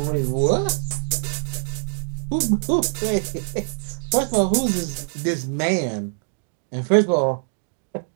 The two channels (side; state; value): left; silent; digital silence